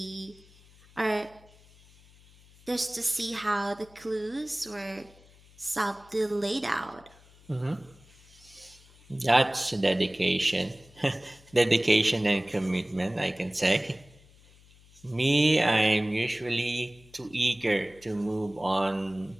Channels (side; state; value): left; noise; hum, 26 dB below the sound